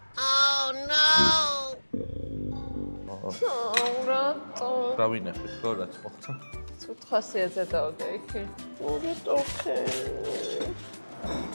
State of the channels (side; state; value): both; inverted; correlation -1.00